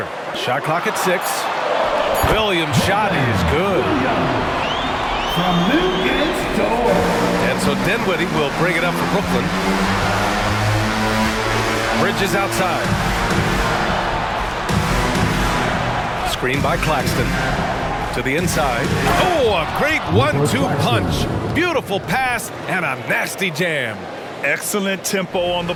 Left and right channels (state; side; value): identical; both; correlation 1.00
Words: Shot clock at 6. Williams' shot is good. From Newgate Torres. And so Dinwiddie will bring it up for Brooklyn. Bridges outside. Screen by Claxton. To the inside. Oh, a great 1-2 punch. Beautiful pass and a nasty jam. Excellent tempo on the